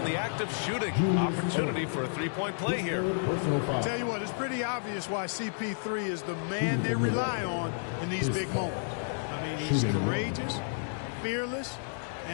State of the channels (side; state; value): right; silent; digital silence